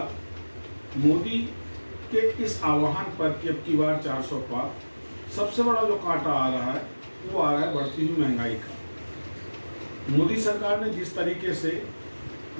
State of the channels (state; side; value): inverted; both; correlation -1.00